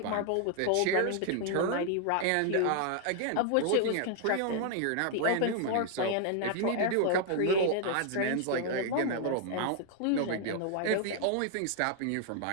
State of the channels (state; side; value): different; both; correlation 0.00